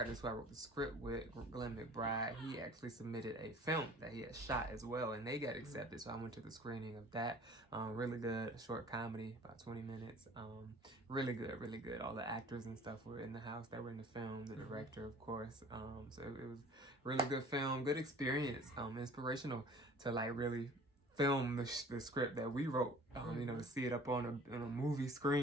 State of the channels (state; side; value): normal; both; correlation 0.48